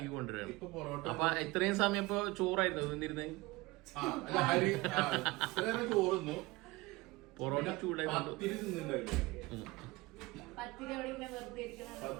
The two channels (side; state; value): left; quieter; 21.9 dB